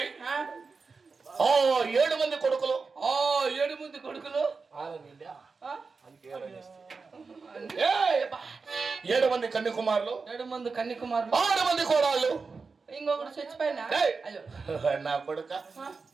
ఓ 7 మంది కొడుకులు 7 మంది కొడుకులు 7 మంది కన్యకుమారులు 7 మంది కన్యకుమారులు 6 మంది కోడళ్ళు ఇంకొకటి చచ్చిపోయినా నా కొడుక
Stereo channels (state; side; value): quieter; left; 4.6 dB